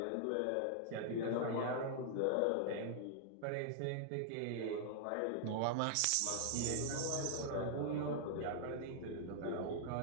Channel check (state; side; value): different; both; correlation -0.01